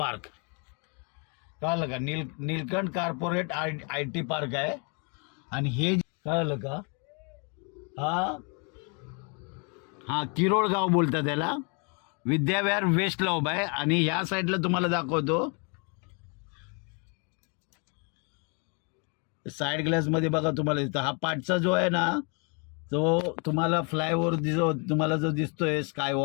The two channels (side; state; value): right; quieter; 35.8 dB